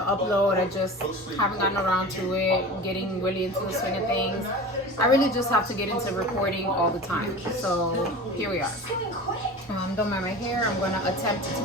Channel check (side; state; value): both; normal; correlation 0.35